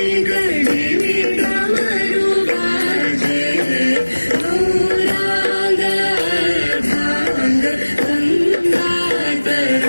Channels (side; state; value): both; inverted; correlation -1.00